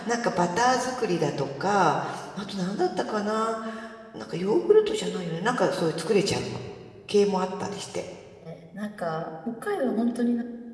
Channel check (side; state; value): both; identical; correlation 1.00